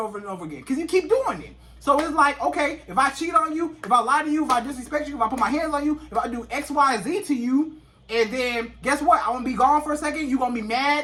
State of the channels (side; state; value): both; identical; correlation 1.00